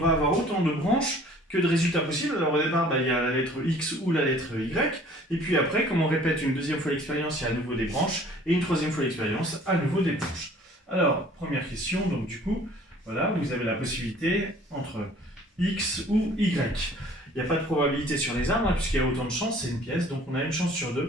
avoir autant de branches que de résultats possibles. Alors au départ, il y a la lettre X ou la lettre Y, et puis après, comme on répète une deuxième fois l'expérience, il y a à nouveau des branches, et une troisième fois l'expérience, à nouveau des branches. Alors, première question, donc du coup, voilà, vous avez la possibilité entre X ou Y. Il n'y a pas de probabilité sur les arbres, hein, puisqu'il y a autant de chances, c'est une pièce, donc on a une chance sur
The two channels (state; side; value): normal; both; correlation 0.52